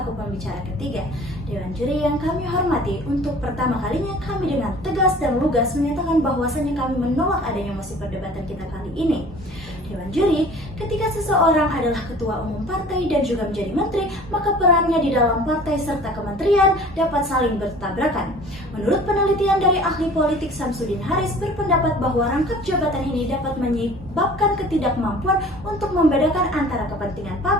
pembicara ketiga. Dewan juri yang kami hormati, untuk pertama kalinya kami dengan tegas dan lugas menyatakan bahwasannya kami menolak adanya mosi perdebatan kita kali ini. Dewan juri, ketika seseorang adalah ketua umum partai dan juga menjadi menteri, maka perannya di dalam partai serta kementerian dapat saling bertabrakan. Menurut penelitian dari ahli politik Samsudin Haris berpendapat bahwa rangkap jabatan ini dapat menyebabkan ketidakmampuan untuk membedakan antara kepentingan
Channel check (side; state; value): both; normal; correlation 0.47